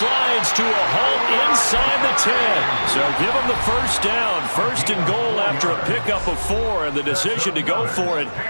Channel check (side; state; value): both; inverted; correlation -1.00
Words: to a halt inside the 10. So give him the 1st down. 1st and goal after a pickup of 4. And the decision to go for it